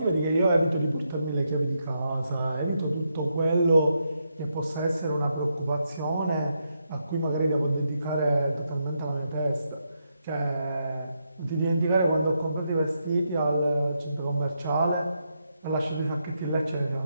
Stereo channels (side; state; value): both; inverted; correlation -0.81